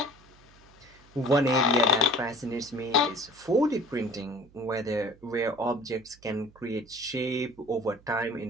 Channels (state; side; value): noise; right; hum, 26 dB below the sound